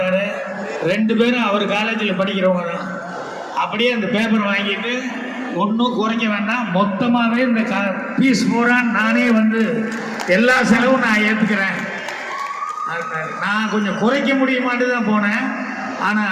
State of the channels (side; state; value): both; identical; correlation 1.00